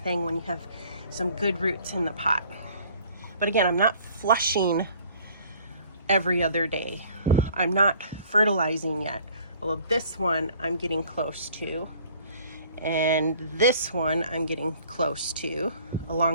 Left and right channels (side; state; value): both; inverted; correlation -0.54